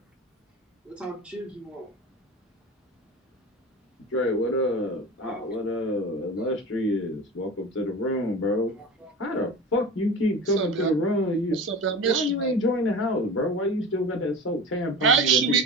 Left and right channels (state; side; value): normal; both; correlation 0.33